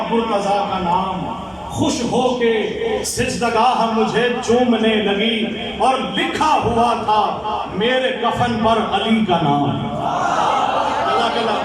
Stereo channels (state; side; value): identical; both; correlation 1.00